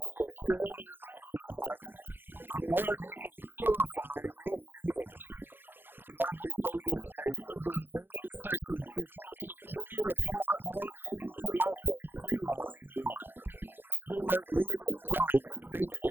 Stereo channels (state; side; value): late; left; 0.10 ms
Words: the failures that we've had, that, Lord, you can purify your servants. God, we pray this day through the remaining sessions that you would continue to pour out into us and through us, Lord, that we might leave encouraged,